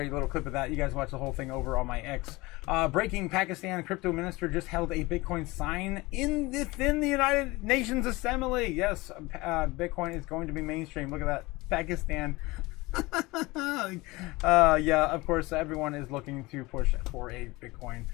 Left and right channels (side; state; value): right; quieter; 22.1 dB